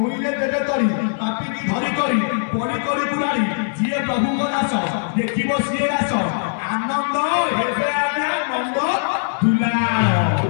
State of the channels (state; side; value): silent; right; 64 dB below the other